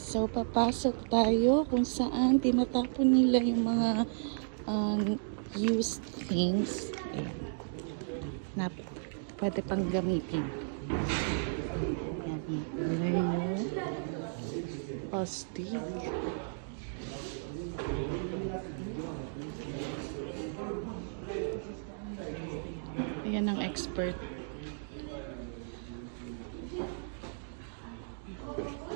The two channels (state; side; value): silent; left; digital silence